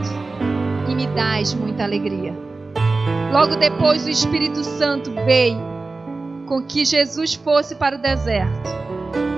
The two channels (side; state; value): left; quieter; 3.6 dB